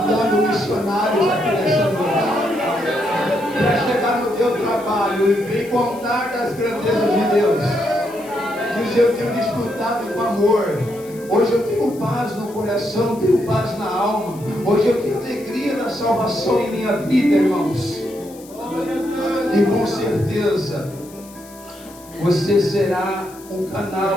missionários aqui nessa noite, para chegar no teu trabalho e contar das grandezas de Deus. Diz: eu tenho desfrutado com amor. Hoje eu tenho paz no coração, tenho paz na alma. Hoje eu tenho alegria da salvação em minha vida, irmãos. E com certeza você será um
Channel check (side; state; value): left; noise; hiss, 22 dB below the sound